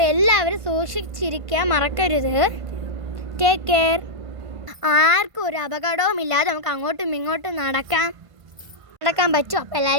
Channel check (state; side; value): late; left; 1.5 ms